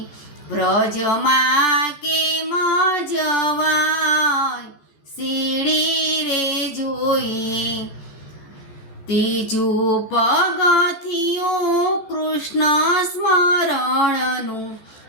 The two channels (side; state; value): right; late; 14 ms